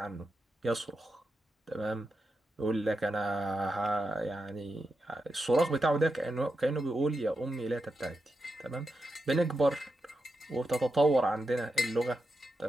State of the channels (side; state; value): both; normal; correlation 0.87